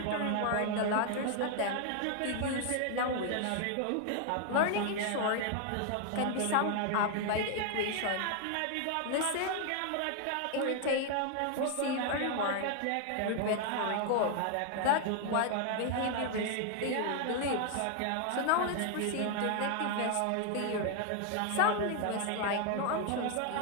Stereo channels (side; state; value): both; different; correlation 0.00